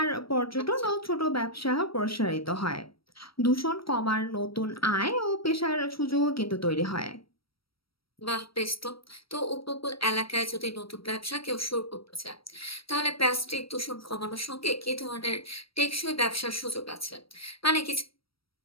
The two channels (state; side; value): late; right; 0.75 ms